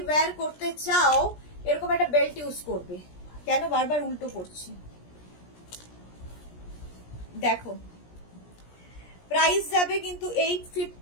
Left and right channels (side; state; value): right; late; 17 ms